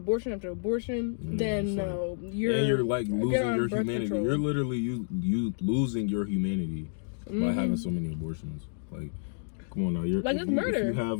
after abortion, then no, you're like losing your humanity. Control. You're literally you losing your humanity by having so many abortions. Like, come on now, it's murder. If you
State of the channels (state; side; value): silent; right; digital silence